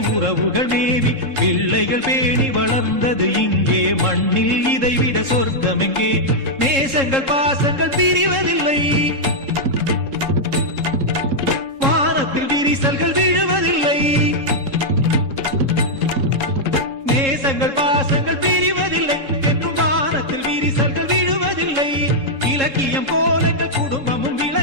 உறவுகள் மேவி பிள்ளைகள் பேணி வளர்ந்தது இங்கே மண்ணில் இதைவிட சொர்க்கம் எங்கே. நேசங்கள் பாசங்கள் பிரிவதில்லை, வானத்தில் விரிசல்கள் விழுவதில்லை. நேசங்கள் பாசங்கள் பிரிவதில்லை என்றும் வானத்தில் விரிசல்கள் விழுவதில்லை. இலக்கியம் போல குடும்பமும்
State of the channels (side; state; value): left; late; 3.7 ms